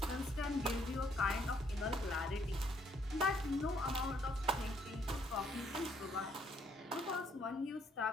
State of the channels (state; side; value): normal; both; correlation 0.68